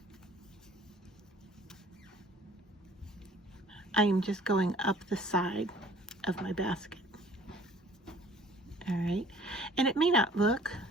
I am just going up the side of my basket. All right, and it may not look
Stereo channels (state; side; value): normal; both; correlation 0.53